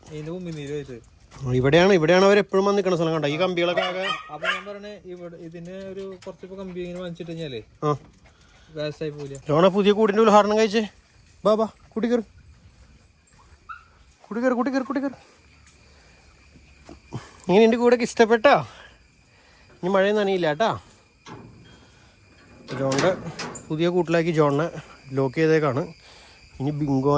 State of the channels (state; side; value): identical; both; correlation 1.00